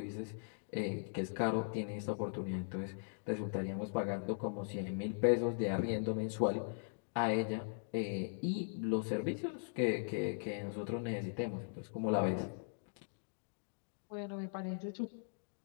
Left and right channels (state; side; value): silent; right; digital silence